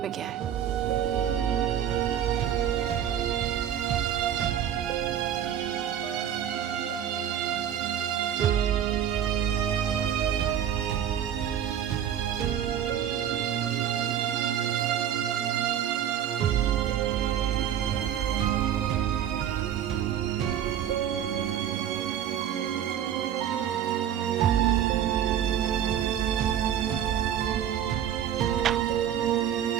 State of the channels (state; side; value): quieter; left; 9.9 dB